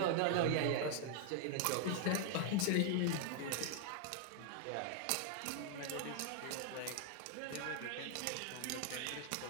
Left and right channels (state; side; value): different; both; correlation 0.00